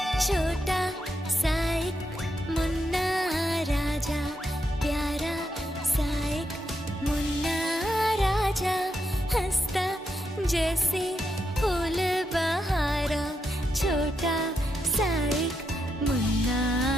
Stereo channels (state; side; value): normal; both; correlation 0.82